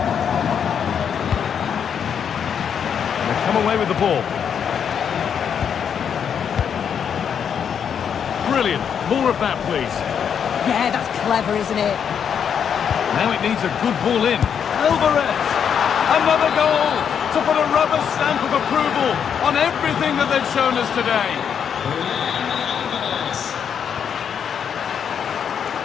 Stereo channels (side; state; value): right; quieter; 7.8 dB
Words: They've come away with the ball. Brilliant. More of that, please. Yeah, that's clever, isn't it? Now it needs a good ball in. Alvarez! Another goal to put a rubber stamp of approval on everything that they've shown us today.